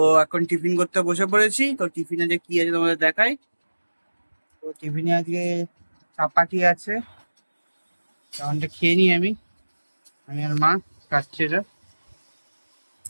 এখন টিফিন করতে বসে পড়েছি। তো টিফিনে যে কি আছে তোমাদের দেখাই। তো টিফিনে আজকে চাপাটি আছে, তেমনটা খেয়ে নিই আমি আর মা খাচ্ছে এটা।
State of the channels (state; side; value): inverted; both; correlation -1.00